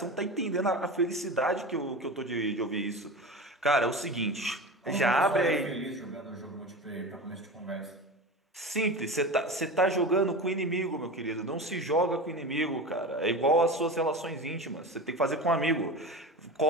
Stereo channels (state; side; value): normal; both; correlation 0.29